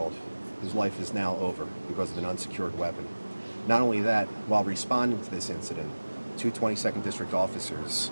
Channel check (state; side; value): inverted; both; correlation -1.00